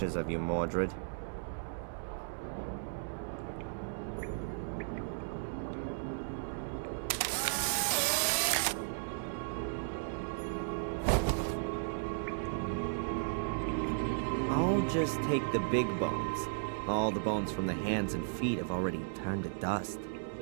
of you, Mordred. I'll just take the big bones. All the bones from the hands and feet have already turned to dust.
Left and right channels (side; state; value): left; silent; 54 dB below the other